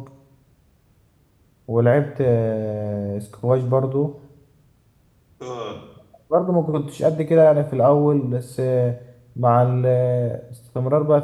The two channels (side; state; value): both; identical; correlation 1.00